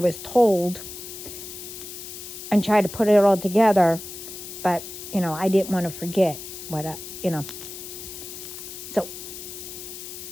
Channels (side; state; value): left; noise; hiss, 11 dB below the sound